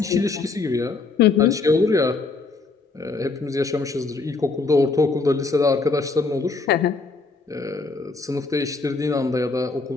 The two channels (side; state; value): right; quieter; 4.0 dB